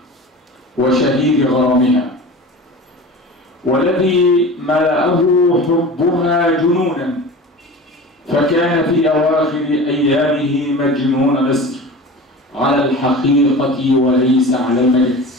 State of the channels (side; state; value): both; normal; correlation 0.35